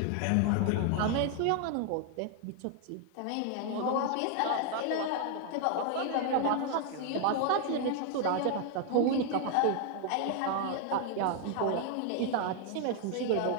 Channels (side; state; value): both; different; correlation 0.00